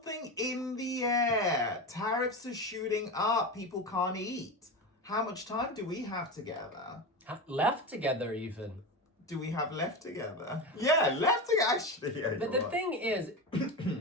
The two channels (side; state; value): both; normal; correlation 0.21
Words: in the air. Tariffs are shooting up. People can't eat. How much time do we have together? Left together, even. Do we have left together? Yeah, left together, actually. Yeah, but the thing is,